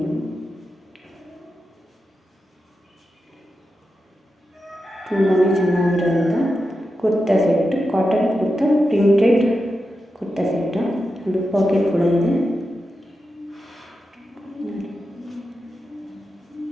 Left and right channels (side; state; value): both; normal; correlation 0.90